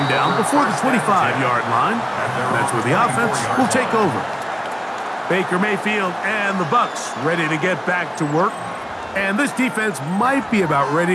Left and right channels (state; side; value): identical; both; correlation 1.00